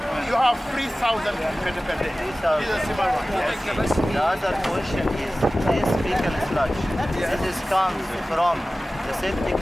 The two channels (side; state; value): both; normal; correlation 0.96